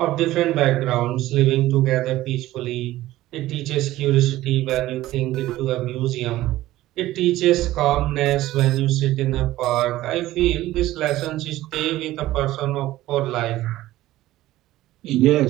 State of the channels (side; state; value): left; quieter; 15.9 dB